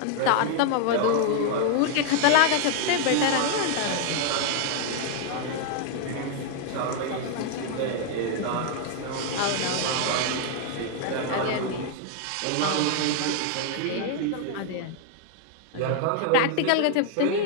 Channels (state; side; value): different; both; correlation 0.00